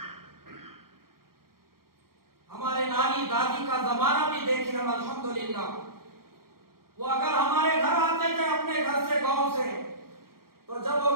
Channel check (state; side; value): late; left; 0.93 ms